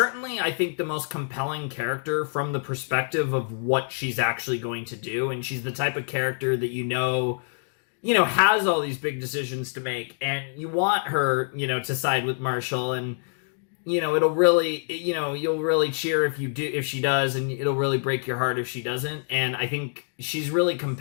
I think, the most compelling character from the perspective of what she's actually going to do. And she's the type of character that, you know, has all these big decisions to make. And you want her, you know, to side with Marshall. And, you know, it'll really, you know, you'll really cheer if she does. And it'll really break your heart if she doesn't. And I think she's really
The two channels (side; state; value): right; silent; digital silence